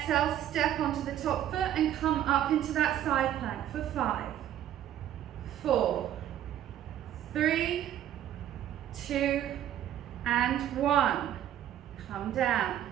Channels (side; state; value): left; quieter; 11.3 dB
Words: step onto the top foot and come up into that side plank for 5, 4, 3, 2, and 1. Come down.